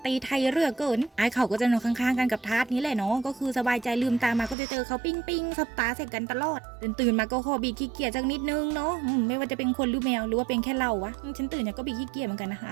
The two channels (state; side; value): drops out; left; at 4.5 s